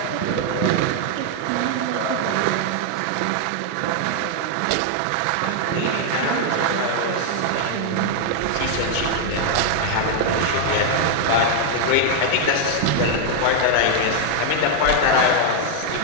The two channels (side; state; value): both; different; correlation 0.00